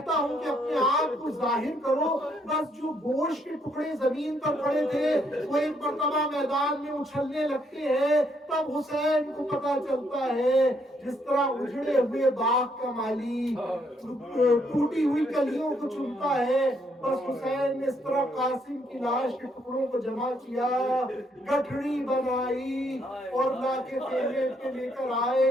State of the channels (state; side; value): normal; both; correlation 0.72